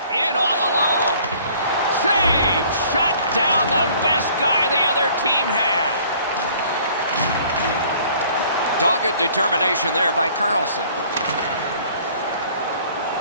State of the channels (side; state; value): both; inverted; correlation -0.55